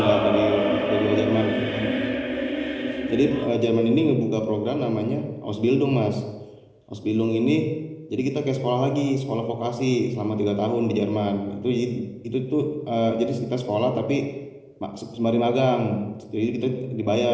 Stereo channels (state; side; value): identical; both; correlation 1.00